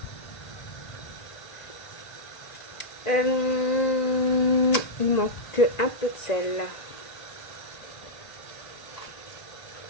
Il manque un peu de sel.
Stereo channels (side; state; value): right; late; 1.8 ms